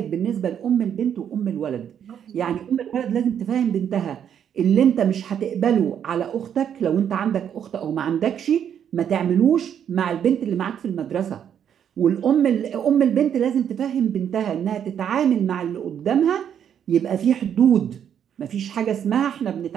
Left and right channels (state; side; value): quieter; left; 8.8 dB